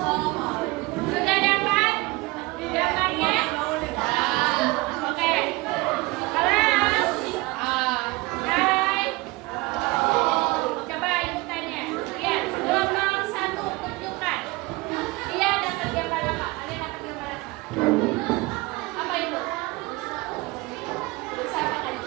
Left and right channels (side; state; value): left; quieter; 22.7 dB